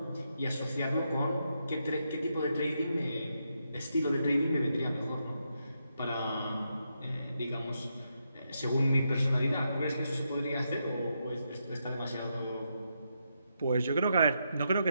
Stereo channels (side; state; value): both; inverted; correlation -0.82